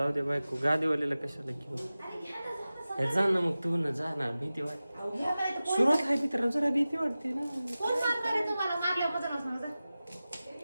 दे बायको. गादीवाल्याला कशाला घेऊ? हे जा ना मग, तू ना जा ना. भीती वाटते. सुरुवात आहे मित्रांनो, जरा भीती वाटते ना.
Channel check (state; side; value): inverted; both; correlation -0.96